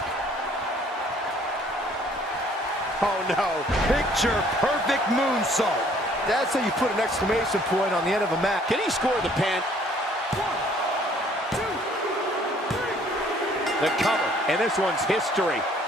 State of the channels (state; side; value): normal; both; correlation 0.59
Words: Oh, no. Picture perfect moonsault. That's how you put an exclamation point on the end of a match. Can he score the pin? The cover, and this one's history.